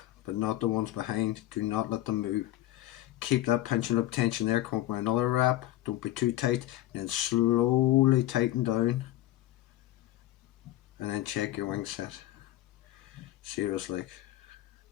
but not the ones behind. Do not let them move. Keep that pinch and loop tension there. Come up with another wrap. Don't be too tight. And then slowly tighten down. And then check your wing set. See what it's like.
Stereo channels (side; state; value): right; quieter; 14.8 dB